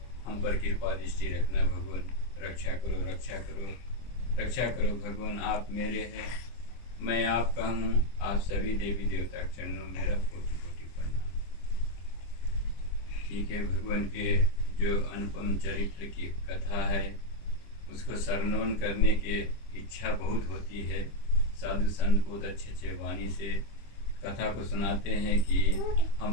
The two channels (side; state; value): right; late; 25 ms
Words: हम पर कृपा दृष्टि रखना भगवान। रक्षा करो, रक्षा करो, रक्षा करो भगवान। आप मेरे हैं, मैं आपका हूँ। आप सभी देवी देवता के चरणों में मेरा कोटि कोटि प्रणाम। ठीक है, भगवान के जो अनुपम चरित्र की कथा है उसको श्रवण करने की इच्छा बहुत होती है। साधु संत बहुत अच्छे अच्छे वाणी से कथा को सुनाते हैं कि